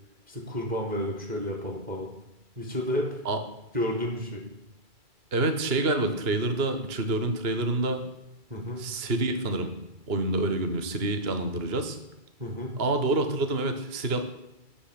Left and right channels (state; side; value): late; left; 2.3 ms